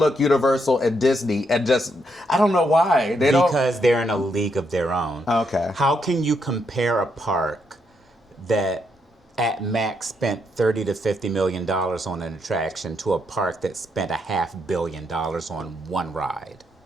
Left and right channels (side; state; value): both; normal; correlation 0.78